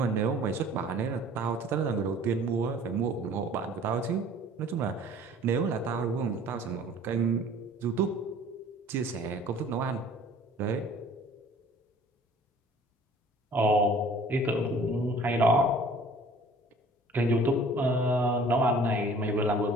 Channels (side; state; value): both; normal; correlation 0.51